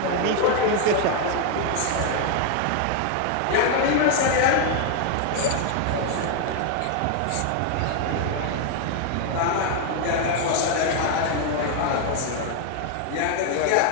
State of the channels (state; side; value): different; both; correlation 0.01